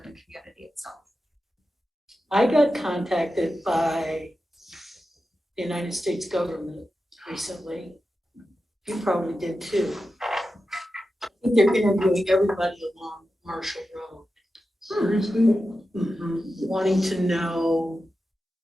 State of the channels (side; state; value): both; normal; correlation 0.91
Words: community itself. I got contacted by the United States government recently. You probably did too. I think they're interviewing everybody along Marshall Road. Seriously? Wanting to know